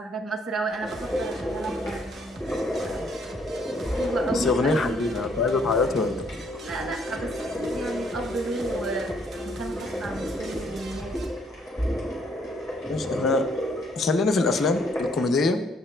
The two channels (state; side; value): normal; both; correlation 0.67